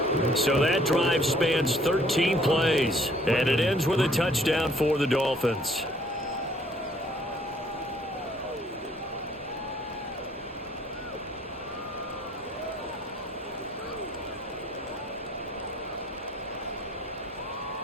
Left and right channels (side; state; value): both; normal; correlation 0.61